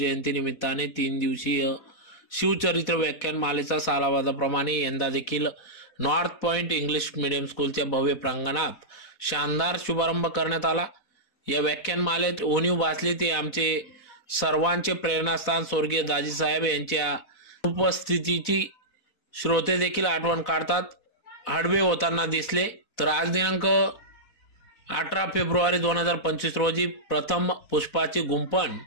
निमित्ताने 3 दिवसीय शिवचरित्र व्याख्यानमालेचा सालाबादाप्रमाणे यंदा देखील नॉर्थ पॉइंट इंग्लिश मीडियम स्कूलच्या भव्य प्रांगणात शानदार शुभारंभ करण्यात आला। या व्याख्यानमालेत उणीव भासली ते आमचे सर्वांचे प्रेरणास्थान स्वर्गीय दाजीसाहेब यांच्या उपस्थितीची श्रोते देखील आठवण काढतात हडवे होताना दिसले। तर आज दिनांक 18 फेब्रुवारी 2025 रोजी प्रथम पुष्पाची गुंफण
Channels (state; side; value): late; right; 4.1 ms